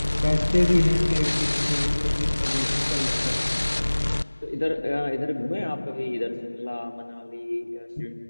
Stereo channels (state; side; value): inverted; both; correlation -1.00